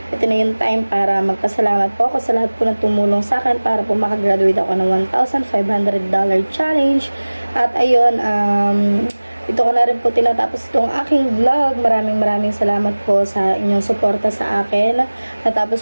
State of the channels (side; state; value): both; inverted; correlation -1.00